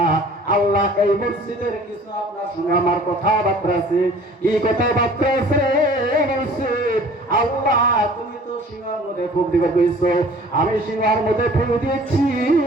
আল্লাহ এই মসজিদের কিছু আপনার সঙ্গে আমার কথাবার্তা আছে। কি কথাবার্তা আছে? মসজিদ আল্লাহ তুমি তো সিংহার মধ্যে ফুক দিবে কইছো, আমি সিংহার মধ্যে ফুক দিয়েছি,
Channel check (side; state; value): both; normal; correlation 0.50